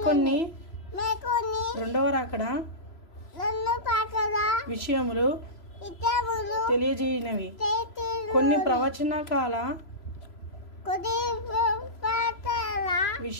రెండవ రాకడ విషయములు తెలియజేయనవి, కొన్ని ప్రవచన కాల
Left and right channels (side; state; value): right; late; 3.0 ms